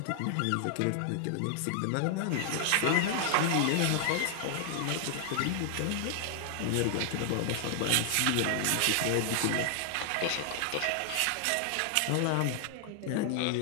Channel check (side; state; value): both; different; correlation 0.00